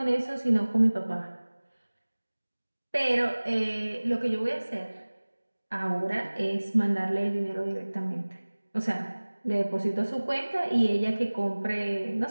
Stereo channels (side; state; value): both; inverted; correlation -1.00